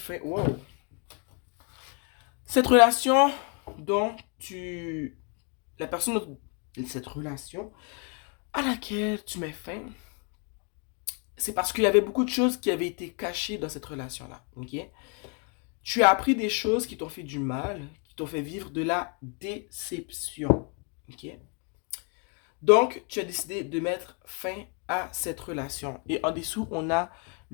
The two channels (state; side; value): quieter; right; 36.3 dB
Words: Wow! Cette relation dont tu... La personne de cette relation à laquelle tu mets fin, c'est parce qu'il y avait beaucoup de choses qui avaient été cachées dans cette relation-là. Ok? Tu as appris des choses qui t'ont fait du mal, qui t'ont fait vivre de la déception. Ok? Donc, tu as décidé de mettre fin à cette relation. Et en dessous, on a